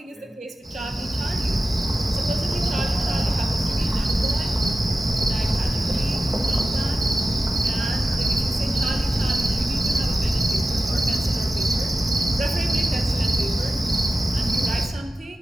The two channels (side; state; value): both; normal; correlation 0.94